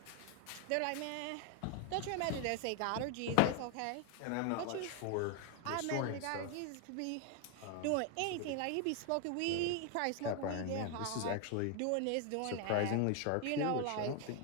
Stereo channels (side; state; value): both; different; correlation 0.01